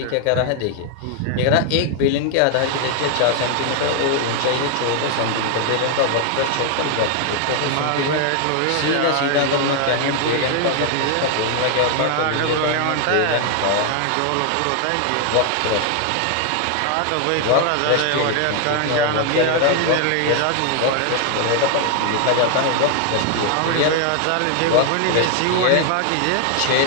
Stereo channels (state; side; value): different; both; correlation 0.00